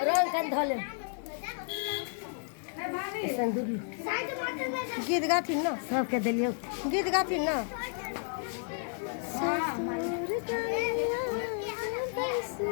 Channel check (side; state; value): right; silent; 57 dB below the other